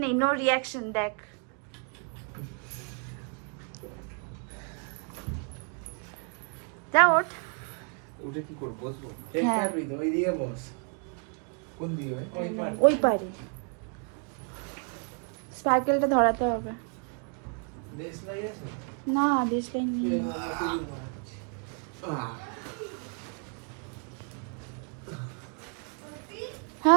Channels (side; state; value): left; quieter; 39.5 dB